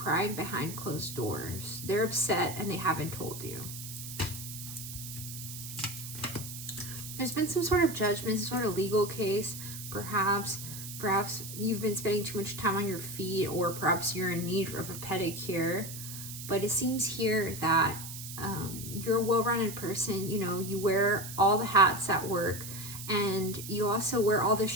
behind closed doors. They're upset and they haven't told you. There's been some sort of judgment, some sort of legal case, perhaps you've been spending too much time on your feet, or perhaps you're in need of a pedicure. But it seems here that you're a well-rounded person. You know, you wear all the hats at work, and you also wear all the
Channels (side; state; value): right; noise; hiss, 10 dB below the sound